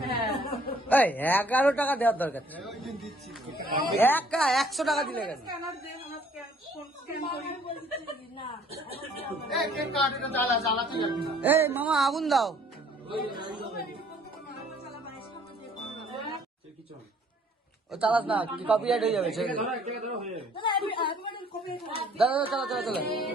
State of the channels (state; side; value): normal; both; correlation 0.58